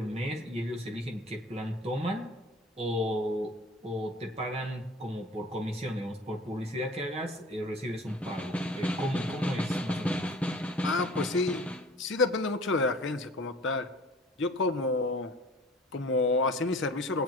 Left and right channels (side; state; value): both; normal; correlation 0.46